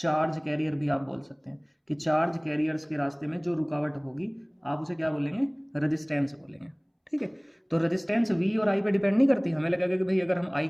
कैरियर भी आप बोल सकते हैं, कि चार्ज कैरियर्स के रास्ते में जो रुकावट होगी आप उसे क्या बोलेंगे? रेजिस्टेंस बोलेंगे। ठीक है, तो रेजिस्टेंस V और I पे डिपेंड नहीं करती। हमें लगेगा कि भाई अगर हम I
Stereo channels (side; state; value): both; identical; correlation 1.00